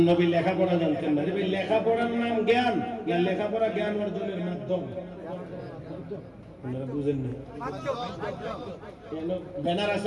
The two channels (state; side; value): identical; both; correlation 1.00